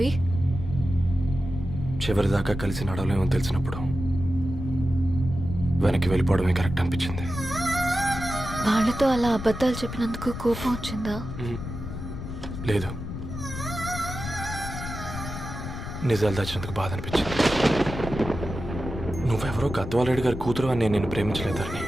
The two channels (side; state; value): left; noise; rumble, 8 dB below the sound